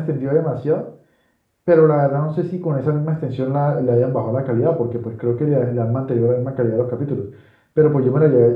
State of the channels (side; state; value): both; identical; correlation 1.00